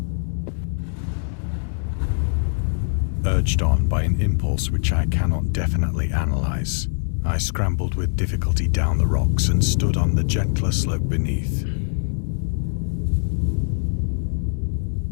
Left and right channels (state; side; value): silent; right; 64 dB below the other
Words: Urged on by an impulse which I cannot definitely analyze, I scrambled with difficulty down the rocks and stood on the gentler slope beneath.